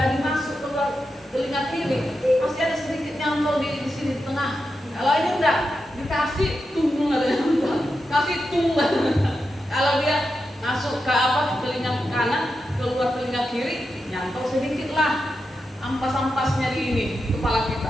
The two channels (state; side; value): normal; both; correlation 0.88